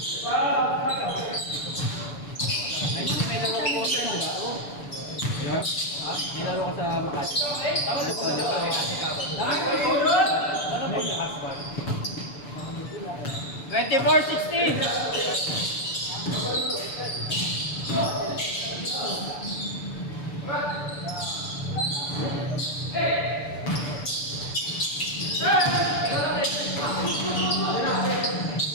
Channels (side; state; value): right; late; 6.9 ms